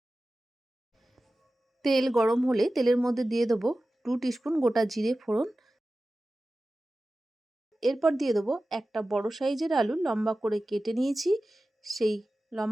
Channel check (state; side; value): normal; both; correlation 0.95